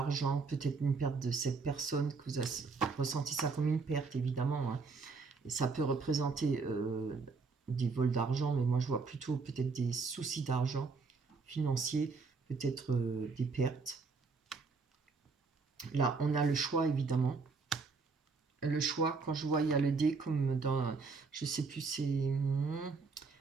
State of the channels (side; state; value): left; quieter; 4.6 dB